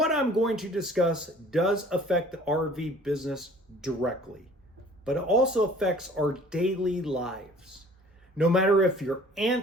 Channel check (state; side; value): normal; both; correlation 0.50